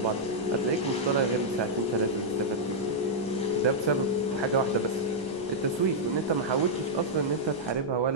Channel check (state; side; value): noise; right; rumble, 23 dB below the sound